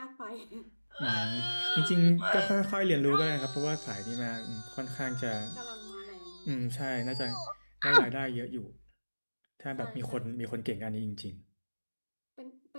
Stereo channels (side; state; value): both; inverted; correlation -1.00